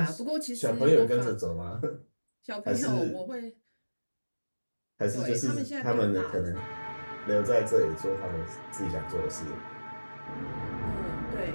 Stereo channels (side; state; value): both; inverted; correlation -1.00